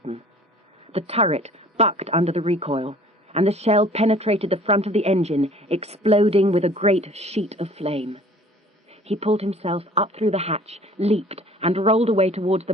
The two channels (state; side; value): normal; both; correlation 0.50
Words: The turret bucked under the recoil, and the shell penetrated the front of the engine, exploding with a great sheet of flame. He pulled himself up through the hatch, leaped, and rolled away towards